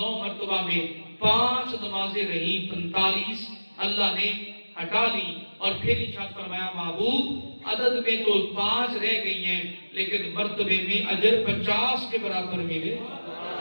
مرتبہ میں 5 نمازیں رہی، 45 اللہ نے ہٹا لی، اور پھر ارشاد فرمایا محبوب عدد میں تو 5 رہ گئی ہیں لیکن مرتبے میں اجر 50 کے برابر ملے۔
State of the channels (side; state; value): both; inverted; correlation -1.00